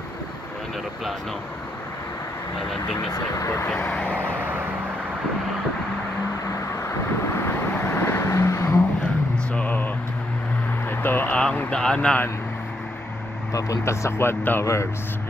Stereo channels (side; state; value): both; normal; correlation 0.78